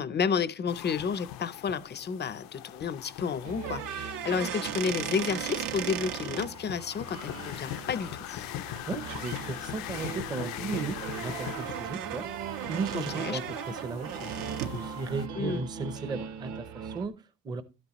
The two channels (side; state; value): both; normal; correlation 0.37